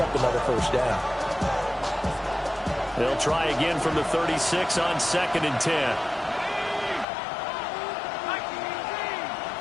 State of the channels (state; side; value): drops out; right; at 7.1 s